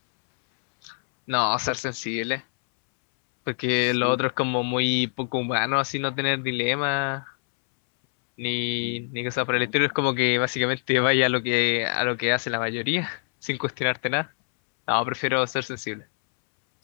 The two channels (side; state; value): right; silent; 62 dB below the other